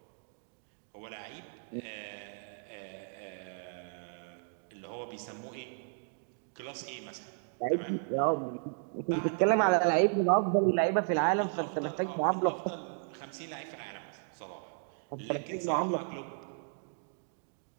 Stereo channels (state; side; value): silent; left; 55 dB below the other